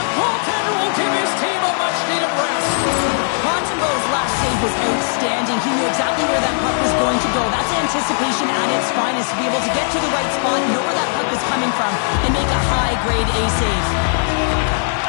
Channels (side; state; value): right; silent; 66 dB below the other